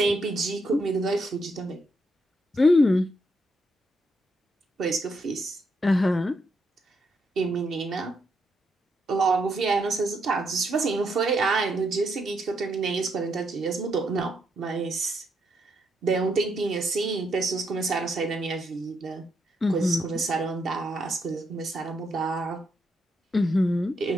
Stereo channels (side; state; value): both; normal; correlation 0.78